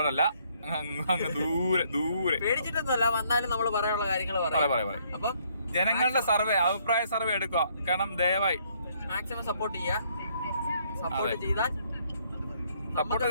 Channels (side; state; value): both; inverted; correlation -0.67